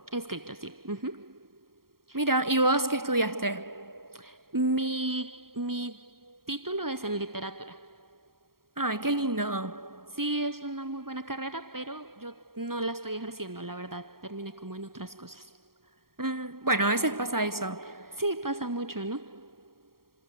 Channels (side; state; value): left; late; 0.93 ms